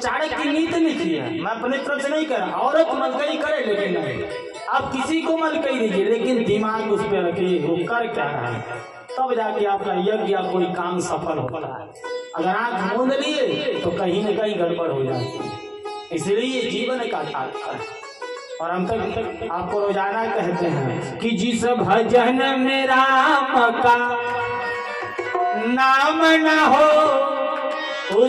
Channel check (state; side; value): identical; both; correlation 1.00